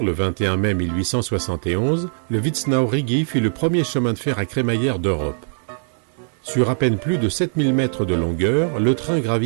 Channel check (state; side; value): silent; left; digital silence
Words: le 21 mai 1871, le Witznau-Rigi fut le premier chemin de fer à crémaillère d'Europe. Sur à peine plus de 7000 mètres de longueur, le train